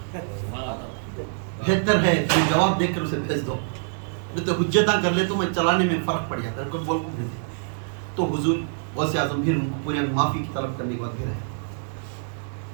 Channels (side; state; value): left; silent; 62 dB below the other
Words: بہتر ہے تمہیں جواب دے کر اسے بھیج دو، نہیں تو حجتاں کر لے تو میں چلانے میں فرق پڑ جاتا ہے. کوئی بول کو بھیج دے تو حضور غوث اعظم پھر ان کو پورے معافی کی طلب کرنے کے بعد پھر آئے،